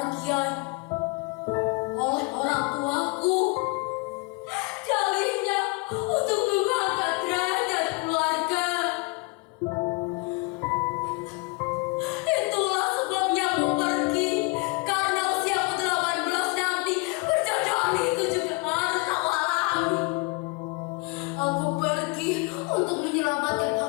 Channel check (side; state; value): right; quieter; 26.7 dB